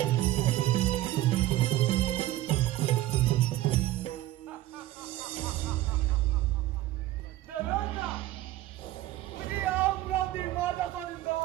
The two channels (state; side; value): quieter; left; 15.3 dB